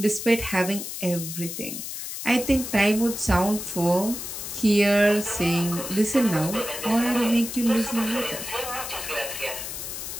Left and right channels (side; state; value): left; noise; hiss, 7 dB below the sound